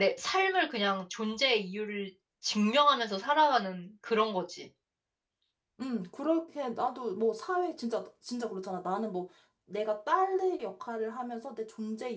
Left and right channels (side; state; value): both; identical; correlation 1.00